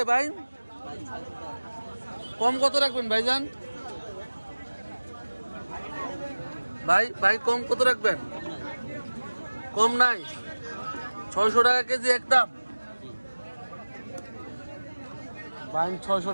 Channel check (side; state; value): both; inverted; correlation -1.00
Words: বাইং? কম কত রাখবেন ভাইজান? ভাই কম কত রাখবেন? কম নাই? 600 টাকা কেজি একদম। বাইং 600